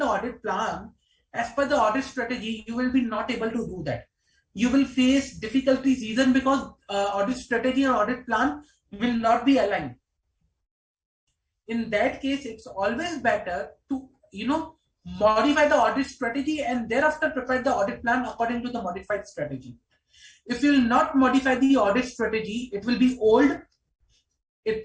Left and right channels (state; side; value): identical; both; correlation 1.00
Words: audit plan as per the audit strategy, you will be not able to do that. You will face difficulties even because audit strategy and audit plan will not be aligned. In that case, it's always better to modify the audit strategy and thereafter prepare the audit plan according to the modified strategy. If you will not modify the audit strategy, it will be old.